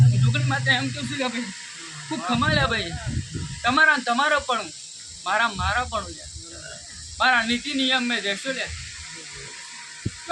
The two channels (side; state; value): both; identical; correlation 1.00